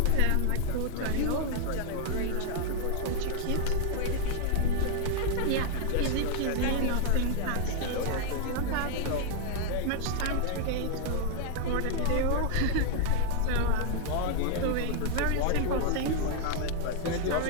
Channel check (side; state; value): both; different; correlation -0.01